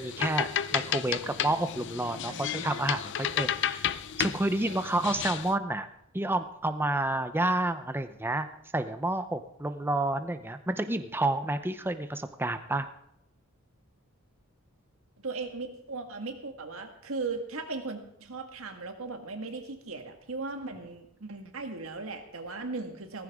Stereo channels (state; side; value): normal; both; correlation 0.53